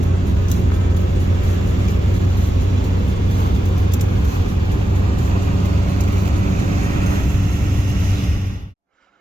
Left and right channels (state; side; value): normal; both; correlation 0.90